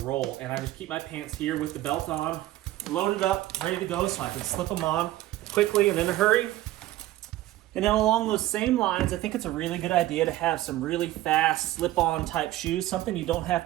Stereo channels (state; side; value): quieter; left; 15.5 dB